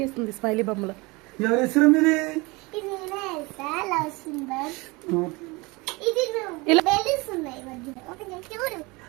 స్మైలీ బొమ్మలు. ఎవరు ఇచ్చారు మీది?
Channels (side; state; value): left; quieter; 25.0 dB